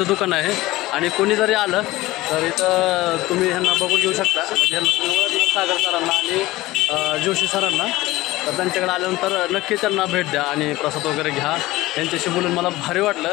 दुकान आहे. आणि कोणी जरी आलं तर इथं तुम्ही ह्यांना बघून घेऊ शकता. म्हणजे ह्यांना तुम्ही ओळखलं सागर सरांना आणि जोशी सरांना. तर त्यांच्याकडे आल्यानंतर नक्की त्यांना भेट द्या आणि प्रसाद वगैरे घ्या. यांच्याशी बोलून मला भारी वाटलं.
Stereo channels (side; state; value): right; quieter; 18.3 dB